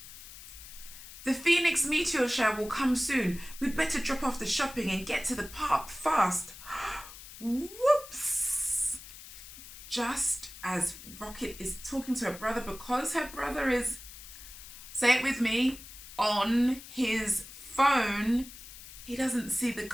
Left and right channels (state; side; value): noise; left; hiss, 15 dB below the sound